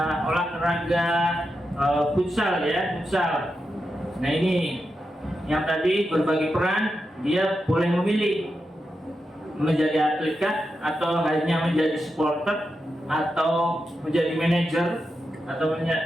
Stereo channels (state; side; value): normal; both; correlation 0.88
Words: olahraga futsal ya, futsal. Nah, ini yang tadi berbagi peran, dia boleh memilih menjadi atlet kah, atau hanya menjadi supporter, atau menjadi manajer, atau